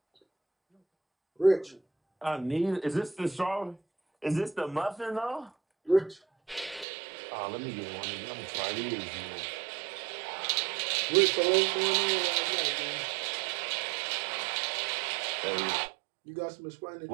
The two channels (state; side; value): drops out; left; at 6.9 s